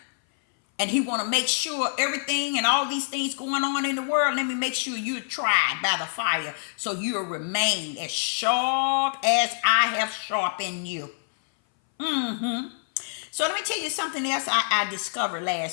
And he want to make sure everything and all these things going on in the world, let me make sure you're tried by the fire, so you'll remain as sharp as I have sharpened you. So let me tell you something else I discovered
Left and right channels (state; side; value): silent; right; 59 dB below the other